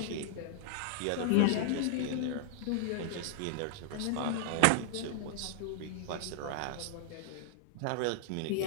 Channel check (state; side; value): different; both; correlation -0.01